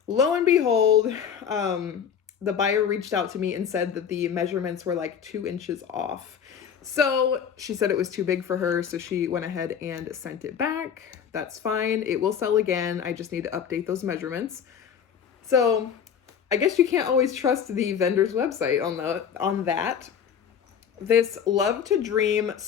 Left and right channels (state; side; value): quieter; right; 7.8 dB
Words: lo and behold, the buyer reached out to me and said that the measurements were like 2 inches off. So she said it was too big for her, so she went ahead and sent it back. That's fine. It will sell again. I just need to update those measurements. So I guess you can't always trust the vendor's website on that. This Love to Dream